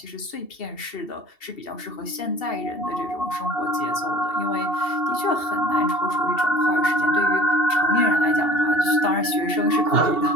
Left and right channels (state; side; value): late; right; 2.7 ms